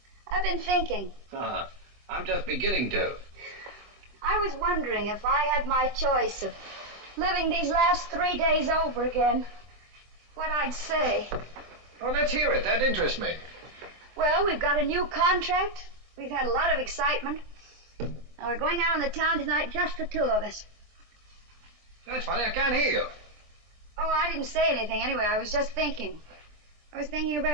I've been thinking. I'm just beginning to. I was wondering if I had my choice of living these last 3 days over again, what I'd say. Well, let's hear it. That interests me. Well, we've got a new contract. We've had a lot of excitement. Now, we're going out on the town tonight, just the two of us. That's funny. I can't hear you. Oh, I didn't say anything anyway. I was just thinking. I was thinking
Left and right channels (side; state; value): left; late; 25 ms